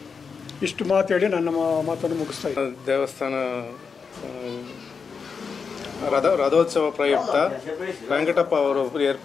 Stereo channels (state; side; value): quieter; right; 5.6 dB